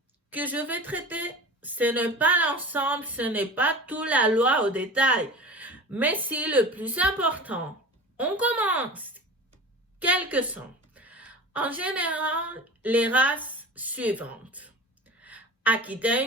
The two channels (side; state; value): both; normal; correlation 0.35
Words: que je vais traiter, ce n'est pas l'ensemble, ce n'est pas toute la loi au détail, mais c'est le plus important. On commence. Quelles sont, en général, les races suivantes. Akita